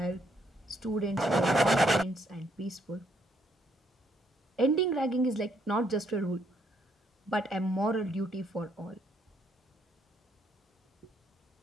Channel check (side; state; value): both; normal; correlation 0.72